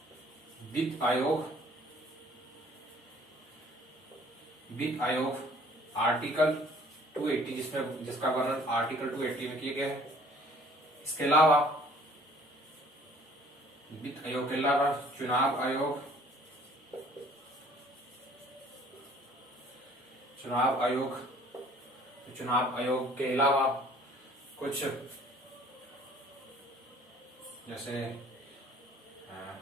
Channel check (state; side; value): normal; both; correlation 0.55